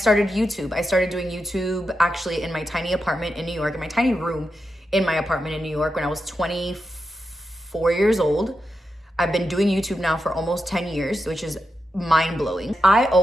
YouTube. I started doing YouTube actually in my tiny apartment in New York, in my tiny room in my apartment in New York when I was 24 years old. I've been doing YouTube now for almost 10 years, which is mind-blowing. I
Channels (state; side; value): normal; both; correlation 0.87